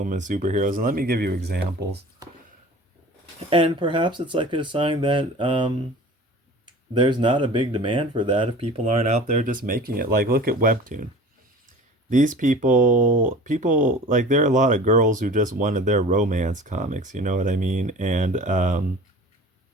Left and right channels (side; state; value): both; normal; correlation 0.41